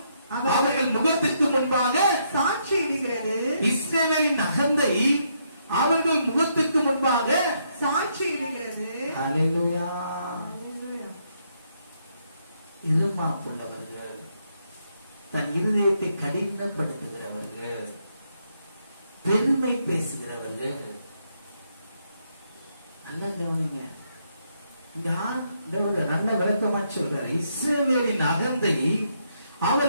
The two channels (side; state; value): both; inverted; correlation -0.75